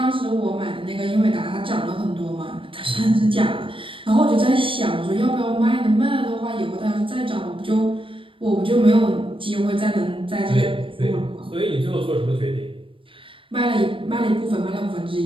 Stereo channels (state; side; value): late; left; 0.25 ms